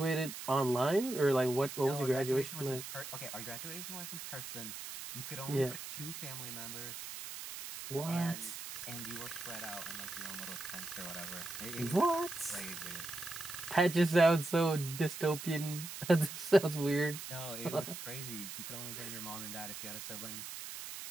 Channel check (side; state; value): right; noise; hiss, 9 dB below the sound